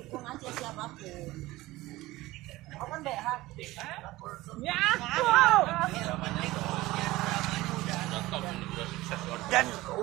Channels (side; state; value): left; quieter; 18.5 dB